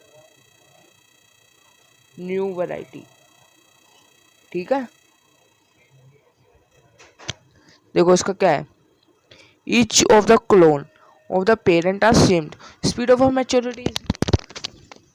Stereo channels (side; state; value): both; identical; correlation 1.00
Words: new variety, ठीक है। देखो इसका क्या है, each of the clone of the parent are same, speed of maturity